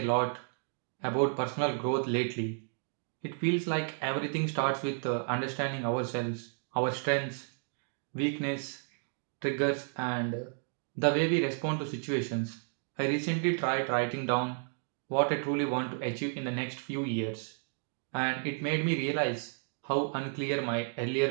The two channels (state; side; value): silent; left; 56 dB below the other